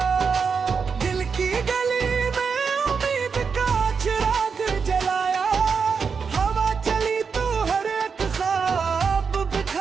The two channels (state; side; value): quieter; left; 5.7 dB